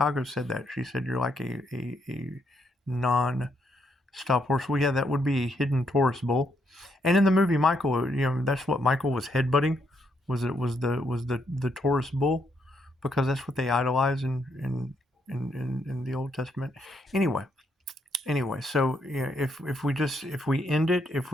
said that. She said you're like a non-stop horse. Well, yeah, that would be a hidden Taurus bull. And in the movie Michael, that's what Michael was headbutting. Was the Taurus bull, because that's what they idolize in the Old Testament. Anyway, so if we end it, if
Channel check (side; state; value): both; normal; correlation 0.76